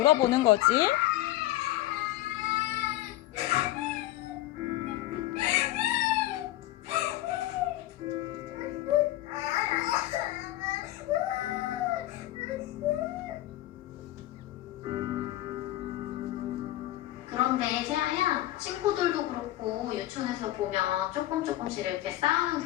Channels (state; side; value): quieter; right; 15.5 dB